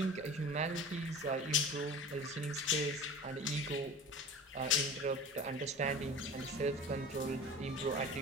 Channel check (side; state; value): both; normal; correlation 0.37